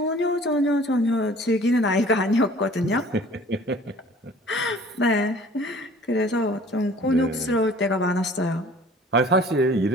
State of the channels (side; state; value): both; normal; correlation 0.49